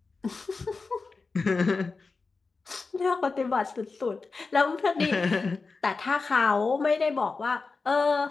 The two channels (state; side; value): quieter; right; 4.2 dB